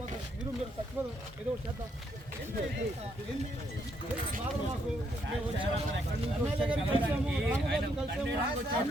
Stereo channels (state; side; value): normal; both; correlation 0.74